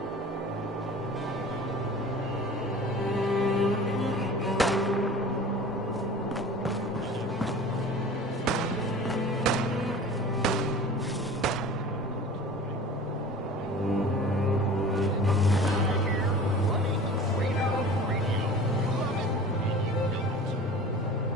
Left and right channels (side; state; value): both; normal; correlation 0.40